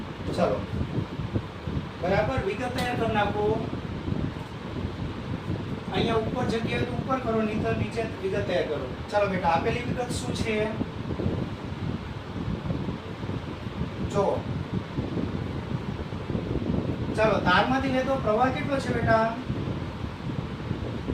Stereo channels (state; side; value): identical; both; correlation 1.00